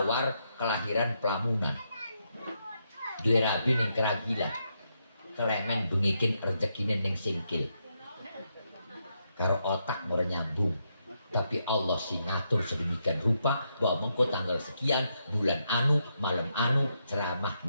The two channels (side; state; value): both; inverted; correlation -0.80